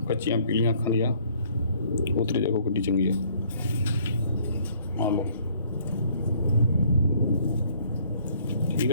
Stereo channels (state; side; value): inverted; both; correlation -0.61